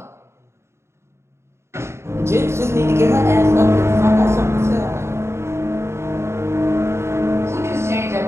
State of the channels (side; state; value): left; late; 0.13 ms